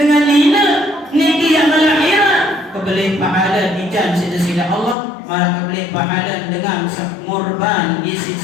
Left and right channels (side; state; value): right; drops out; at 5.0 s